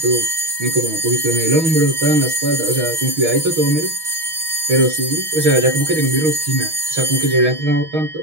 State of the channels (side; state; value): left; late; 6.3 ms